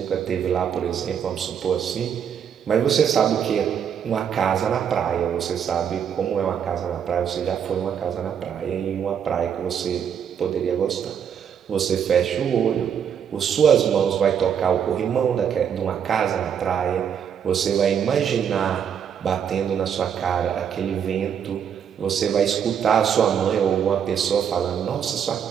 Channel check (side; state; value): left; quieter; 8.1 dB